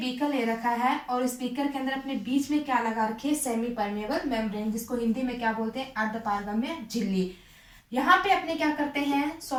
ले रखा है और इस बीकर के अंदर अपने बीच में क्या लगा रखे? सेमी परमेबल मेम्ब्रेन, जिसको हिंदी में क्या बोलते हैं? अर्धपारगम्य झिल्ली। यहाँ पे अपने क्या करते हैं?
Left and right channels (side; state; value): both; identical; correlation 1.00